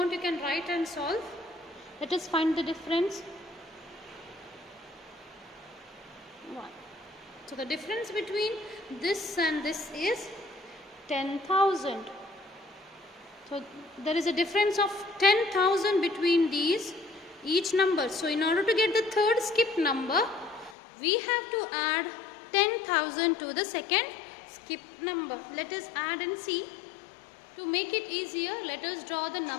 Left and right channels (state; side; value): drops out; right; at 20.8 s